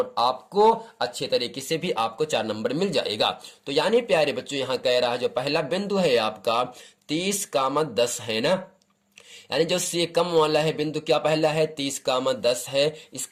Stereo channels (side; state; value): both; identical; correlation 1.00